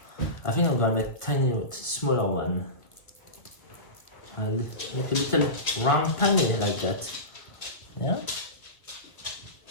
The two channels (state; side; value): late; right; 1.7 ms